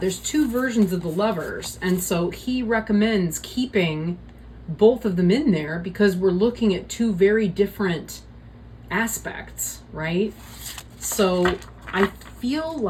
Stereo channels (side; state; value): both; identical; correlation 1.00